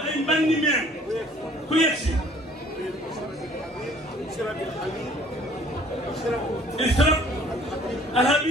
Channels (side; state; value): both; normal; correlation 0.56